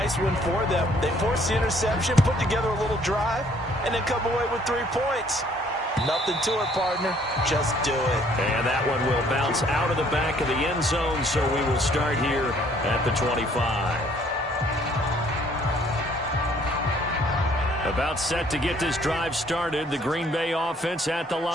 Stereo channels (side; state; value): both; normal; correlation 0.61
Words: one for them. They forced the interception, put together a little drive, and then come away with 3 points. Nothing to it, partner. Just do it. And that one will bounce out of the back of the end zone, so we will start here at the 25. About set to get this drive started, the Green Bay offense at the